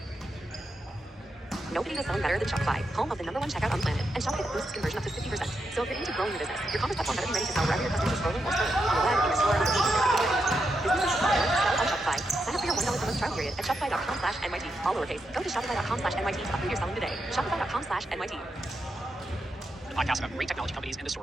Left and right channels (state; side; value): normal; both; correlation 0.84